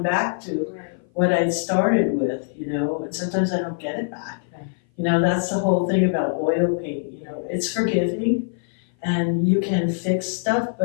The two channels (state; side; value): silent; right; 57 dB below the other